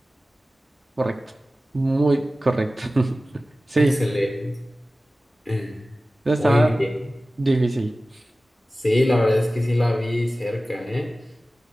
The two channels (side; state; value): both; normal; correlation 0.96